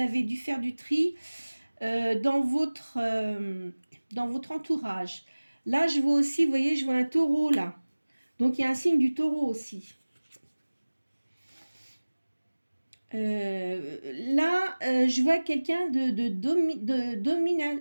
dû faire du tri dans votre entourage. Là, je vois aussi, vous voyez, je vois un taureau là. Donc il y a un signe du taureau aussi. Là, je vois quelqu'un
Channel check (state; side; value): inverted; both; correlation -1.00